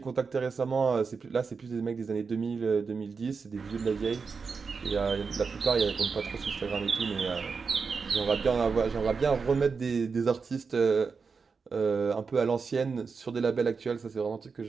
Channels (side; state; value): left; quieter; 5.1 dB